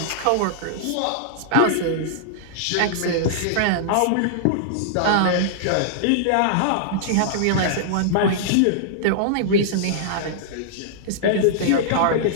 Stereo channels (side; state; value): both; different; correlation -0.02